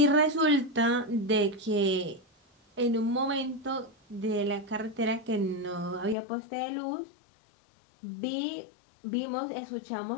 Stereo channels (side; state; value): right; drops out; at 6.2 s